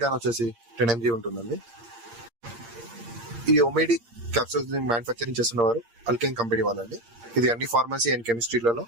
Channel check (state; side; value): late; left; 8.6 ms